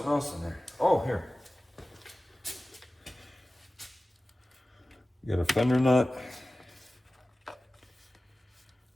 else in there. Oh, here. You got a fender nut.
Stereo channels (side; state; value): both; normal; correlation 0.96